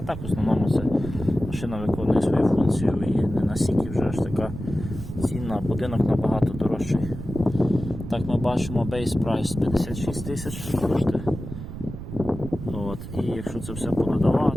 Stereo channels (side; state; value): right; noise; rumble, 9 dB below the sound